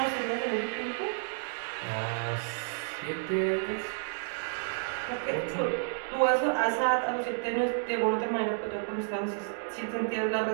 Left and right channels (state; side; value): silent; left; digital silence